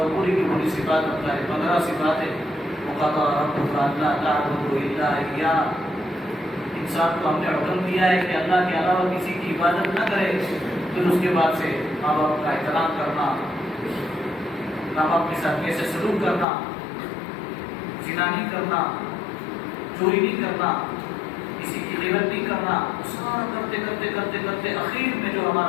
پوری کی پوری صفات بتلائے، 15 صفات ہے۔ وَقَضَىٰ رَبُّكَ أَلَّا تَعْبُدُوا إِلَّا إِيَّاهُ، انسان کو ہم نے حکم دیا ہے کہ اللہ کے علاوہ کسی کی عبادت نہ کرے، پھر اس کے بعد سے ماں باپ کا احترام کرنا، ماں باپ کے ساتھ کیسے سلوک کرنا، زنا نہیں کرنا، چوری نہیں کرنا، کسی کی غیبت نہیں کرنا، سارا کرتے کرتے کرتے کرتے آخر میں جو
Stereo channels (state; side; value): drops out; right; at 16.4 s